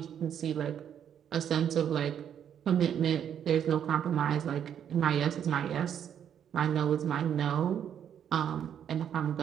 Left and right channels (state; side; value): quieter; left; 9.0 dB